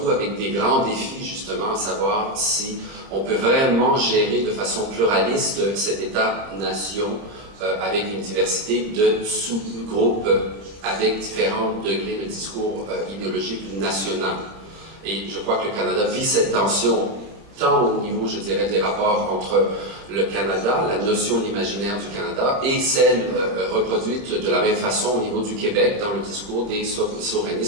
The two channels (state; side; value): late; left; 30 ms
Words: avec des grands défis justement à savoir si on peut vraiment gérer de façon pluraliste cet État-nation avec une diversité de sous-groupes avec différents degrés de discours idéologique national. Et je crois que le Canada vit cette tension tant au niveau, je dirais, des rapports entre le Canada, la notion de l'imaginaire du Canada, et celle reproduite de la même façon au niveau du Québec dans le discours des